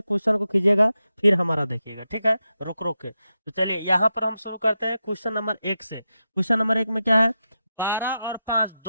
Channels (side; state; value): both; inverted; correlation -0.89